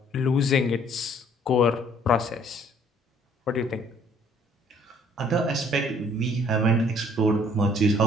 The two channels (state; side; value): normal; both; correlation 0.60